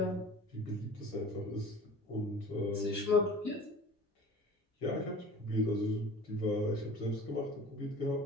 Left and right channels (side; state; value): both; normal; correlation 0.42